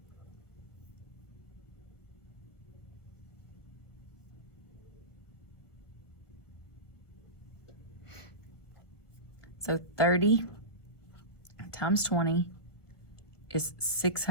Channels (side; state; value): right; late; 1.3 ms